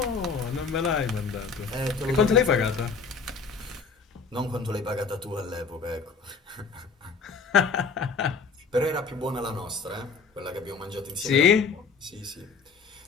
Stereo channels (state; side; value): quieter; right; 4.9 dB